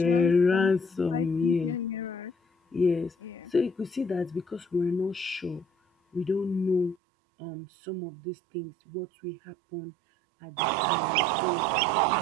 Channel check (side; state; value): left; drops out; at 7.0 s